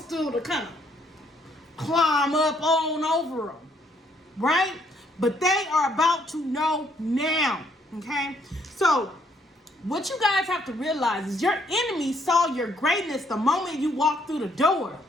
to kind of climb up on over them, right? But they are about to know now, okay? So what you guys have to realize is your enemy saw your greatness the moment you walked through the door.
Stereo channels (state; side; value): normal; both; correlation 0.69